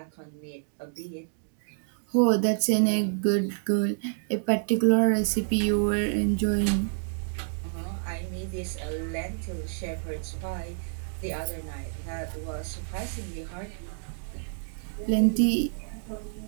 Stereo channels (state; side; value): silent; left; digital silence